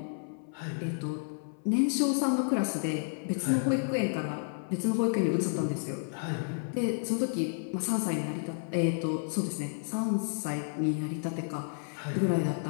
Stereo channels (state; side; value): silent; right; 57 dB below the other